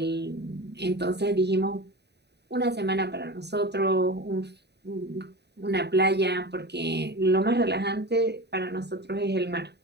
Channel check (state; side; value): late; left; 0.49 ms